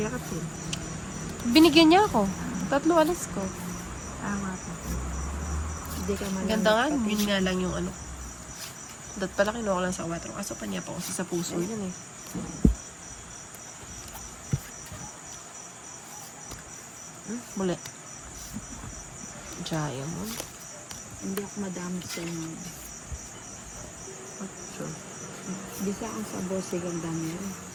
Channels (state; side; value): identical; both; correlation 1.00